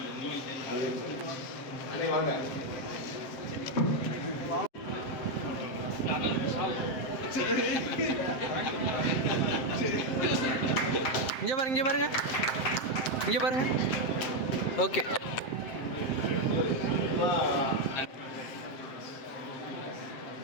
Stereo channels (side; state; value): right; late; 7.7 ms